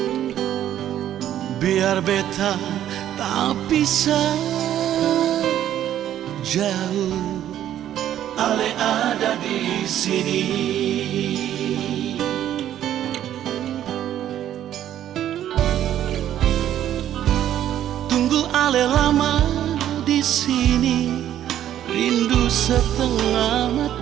Biar beta tak bisa jauh, ale ada di sini. Tunggu ale lama di sini, rindu setengah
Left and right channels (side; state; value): left; quieter; 11.4 dB